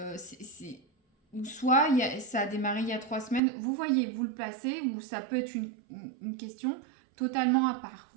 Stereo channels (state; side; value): drops out; left; at 3.4 s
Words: Ou soit ça a démarré il y a 3 semaines. Vous voyez, vous le placez, ou ça peut être une question totalement à part.